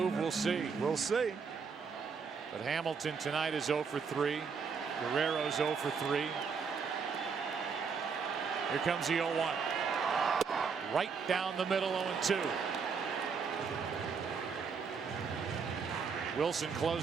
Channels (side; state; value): left; quieter; 5.6 dB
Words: We'll see. We'll see. But Hamilton tonight is 0 for 3. Guerrero's 0 for 3. Here comes the 0-1. Right down the middle, 0-2. Wilson